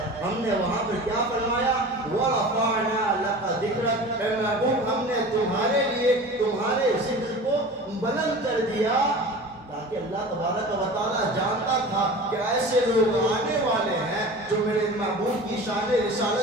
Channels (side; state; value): both; normal; correlation 0.36